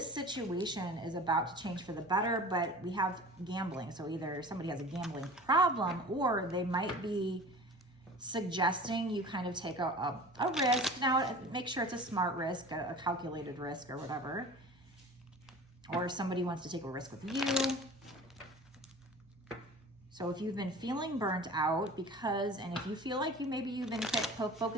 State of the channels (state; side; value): normal; both; correlation 0.40